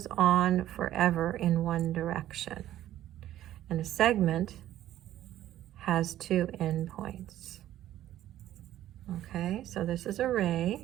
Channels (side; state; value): left; quieter; 13.0 dB